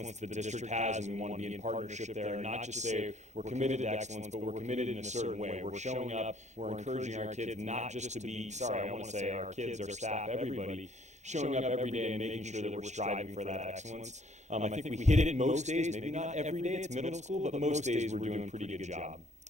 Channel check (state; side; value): late; left; 0.34 ms